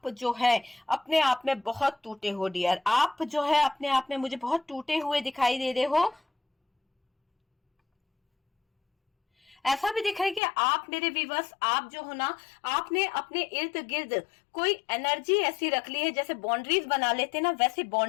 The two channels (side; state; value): right; drops out; at 10.4 s